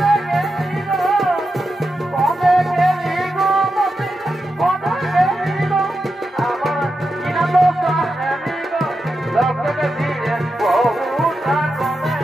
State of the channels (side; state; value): both; normal; correlation 0.89